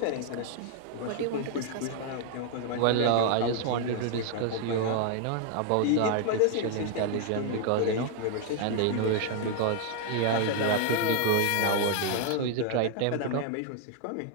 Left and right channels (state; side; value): different; both; correlation 0.00